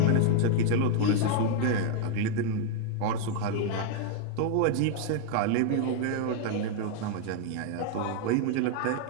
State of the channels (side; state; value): both; different; correlation 0.00